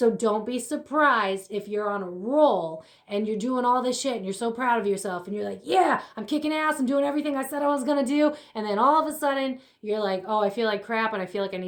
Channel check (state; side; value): identical; both; correlation 1.00